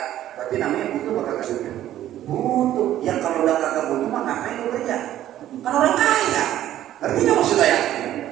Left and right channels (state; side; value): quieter; left; 12.5 dB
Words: berarti namanya butuh apa kagak butuh? Butuh. Ya kalau udah kagak butuh mah ngapain lu kerja? Kan orang kaya. Ngerti nggak maksud saya?